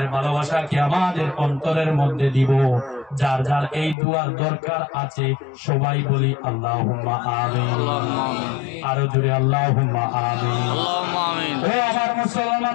ভালোবাসাকে আমাদের অন্তরের মধ্যে দিব। যার যার এই দুয়ার দরকার আছে সবাই বলি আল্লাহুম্মা আমিন। আরো জোরে আল্লাহুম্মা আমিন। ও আমার মুসলমান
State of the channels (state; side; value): drops out; right; at 4.0 s